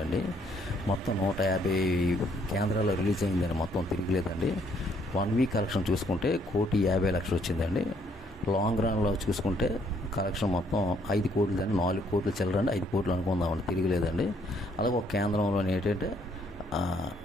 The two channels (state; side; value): normal; both; correlation 0.67